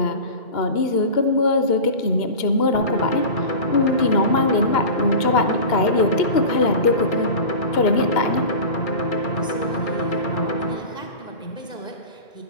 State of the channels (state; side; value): late; right; 2.1 ms